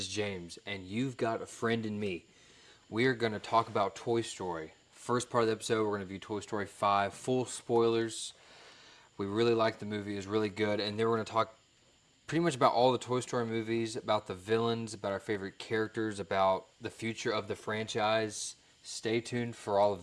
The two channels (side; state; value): both; identical; correlation 1.00